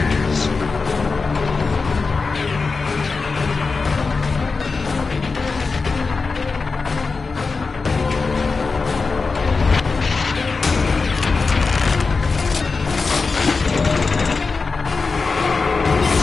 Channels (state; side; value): quieter; right; 4.4 dB